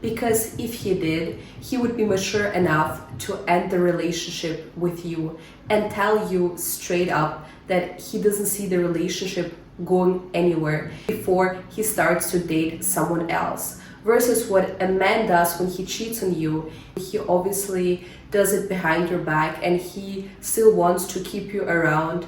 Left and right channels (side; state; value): both; identical; correlation 1.00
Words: Because if he did, he would be mature enough to end the relationship with you and tell you straight up that he doesn't see the relationship going anywhere before he starts to date someone else. Versus what a man does when he cheats on you, he obviously does it behind your back and he still wants to keep you around